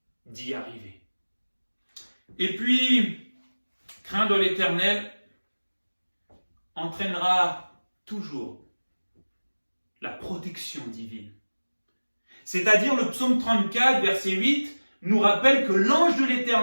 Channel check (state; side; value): inverted; both; correlation -1.00